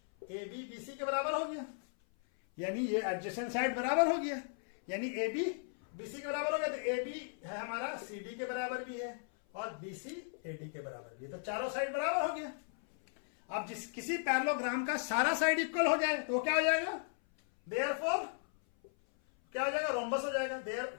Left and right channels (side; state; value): right; silent; 54 dB below the other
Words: ab bc के बराबर हो गया, यानी ये एडजेसेंट साइड बराबर हो गया, यानी ab bc के बराबर हो गया, तो ab है हमारा cd के बराबर भी है और bc ad के बराबर भी है, तो चारों साइड बराबर हो गया। अब जिस किसी पैरेललोग्राम का सारा साइड इक्वल हो जाए तो क्या हो जाएगा, देयरफॉर क्या हो जाएगा, रोम्बस हो जाएगा, देयर